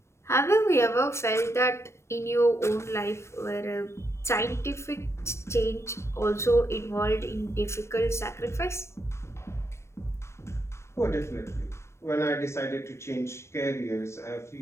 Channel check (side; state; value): right; late; 0.13 ms